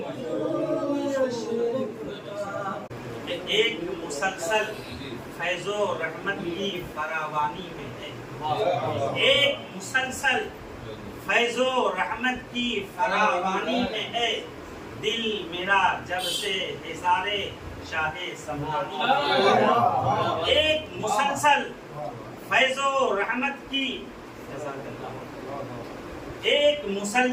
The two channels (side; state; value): both; identical; correlation 1.00